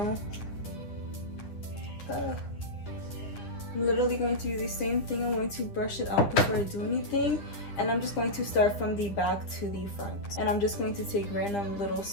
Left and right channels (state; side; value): late; right; 10 ms